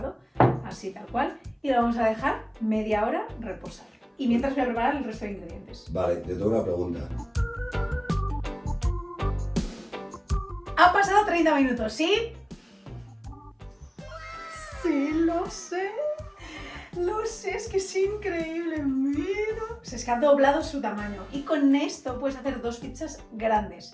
así tal cual, y lo vamos a dejar media hora reposar. y mientras voy a preparar el resto de ingredientes. Vale, te tengo una pregunta. Han pasado 30 minutos, ¿sí? Sí, lo sé. Lo sé, es que es increíble, mira. O sea, es que ha doblado su tamaño. Y con esto puedes hacer 2 pizzas grandes,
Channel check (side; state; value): both; identical; correlation 1.00